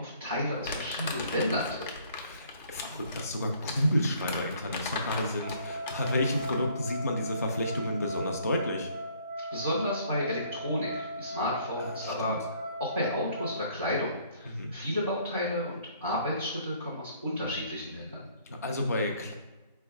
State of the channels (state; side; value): inverted; both; correlation -0.61